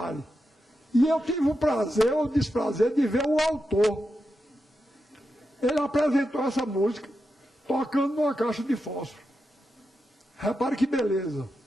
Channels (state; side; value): normal; both; correlation 0.88